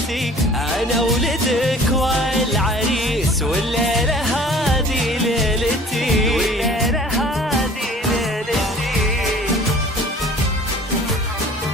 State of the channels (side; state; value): both; normal; correlation 0.48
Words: انا ولدك والعريس والليلة هذه ليلتي، والليلة هذه ليلتي.